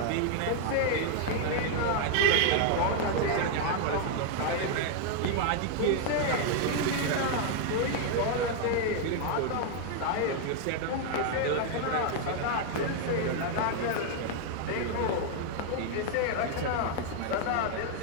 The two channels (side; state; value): both; different; correlation 0.00